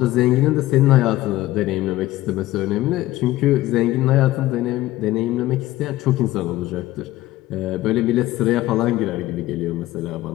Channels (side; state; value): right; quieter; 16.4 dB